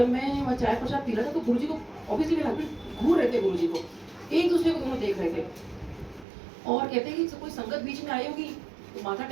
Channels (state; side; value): drops out; left; at 6.2 s